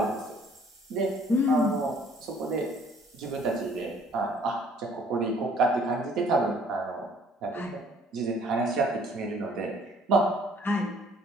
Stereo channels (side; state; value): both; normal; correlation 0.59